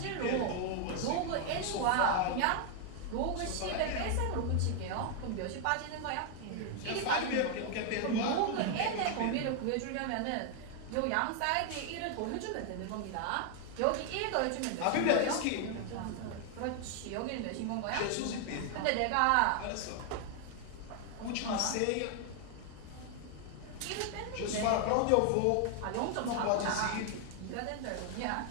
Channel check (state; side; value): different; both; correlation 0.00